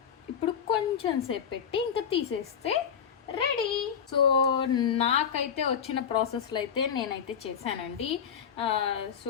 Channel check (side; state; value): right; quieter; 7.6 dB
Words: ఇప్పుడు కొంచెం సేపు పెట్టి ఇంకా తీసేస్తే రెడీ. సో నాకైతే వచ్చిన ప్రాసెస్లో అయితే నేనైతే చేశానండి.